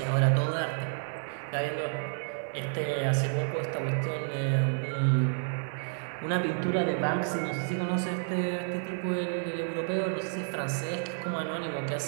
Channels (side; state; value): left; silent; 58 dB below the other